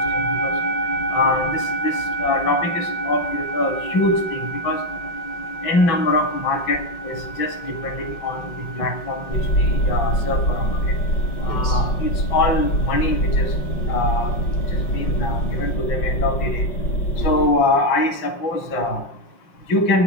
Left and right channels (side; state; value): right; late; 5.7 ms